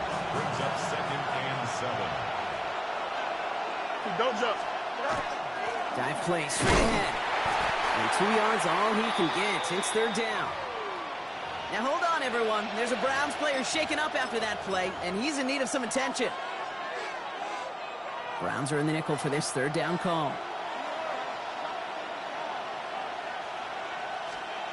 Brings up 2nd and 7. Don't jump. Dive play straight ahead. And 2 yards all he can get. It's 3rd down. Now hold on, everyone. There's a Browns player shaken up after that play, and he's in need of some attention. Browns are in the nickel for this 3rd down call.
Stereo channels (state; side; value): identical; both; correlation 1.00